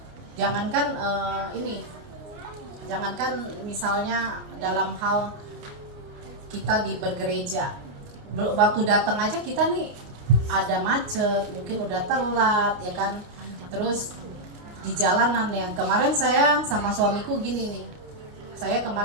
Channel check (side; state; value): left; late; 29 ms